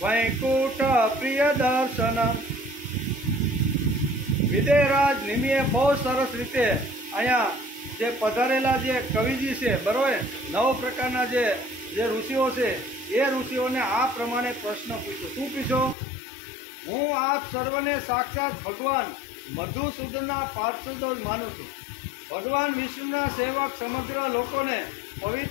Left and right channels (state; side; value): drops out; right; at 16.0 s